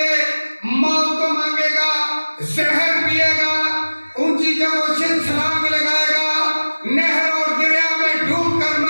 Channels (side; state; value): both; inverted; correlation -1.00